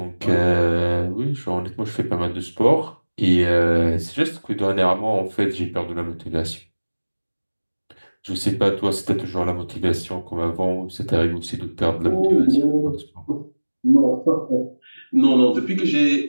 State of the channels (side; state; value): both; inverted; correlation -1.00